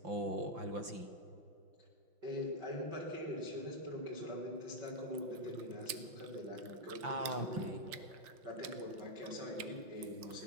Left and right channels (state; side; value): late; left; 6.3 ms